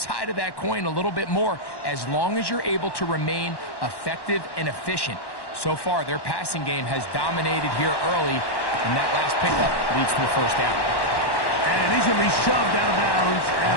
of that coin a little bit more as long as you're able to remain effective and efficient. So far, their passing game has dominated here early, and that last pickup leads to a first down. And he's going to be shoved out of bounds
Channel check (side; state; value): right; late; 1.1 ms